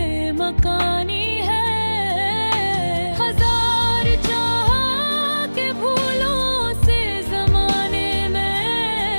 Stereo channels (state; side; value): inverted; both; correlation -1.00